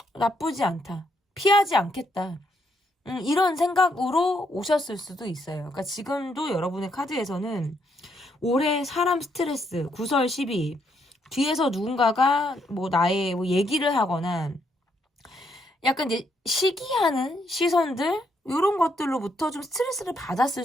나쁘지 않다. 피하지 않겠다. 이런 생각으로 오셨을 수도 있어요. 그러니까 지금도 여러분의 카드에서는 올해 사람 스트레스, 구설 12, 뒤에서 누군가가 뭐 나의 뭐 얘기를 하거나 약간 이제 시기하는 시선들 이런 것들로부터 좀 스트레스를 받았을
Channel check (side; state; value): both; normal; correlation 0.75